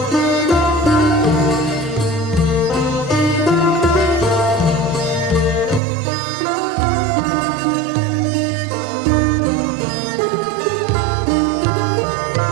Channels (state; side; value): drops out; left; at 5.8 s